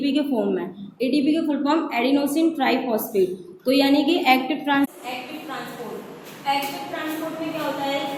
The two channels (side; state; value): both; identical; correlation 1.00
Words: के फॉर्म में। एटीपी के फुल फॉर्म एडिनोसिन ट्राइफॉस्फेट। तो यानी कि एक्टिव ट्रांसपोर्ट में क्या होता है